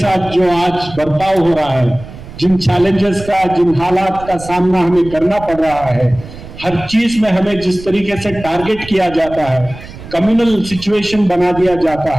जो आज बर्ताव हो रहा है, जिन चैलेंजेस का, जिन हालात का सामना हमें करना पड़ रहा है, हर चीज में हमें जिस तरीके से टारगेट किया जाता है, कम्युनल सिचुएशन बना दिया जाता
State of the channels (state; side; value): noise; right; rumble, 15 dB below the sound